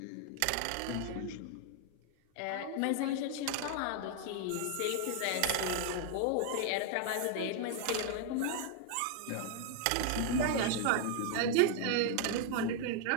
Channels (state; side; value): different; both; correlation 0.00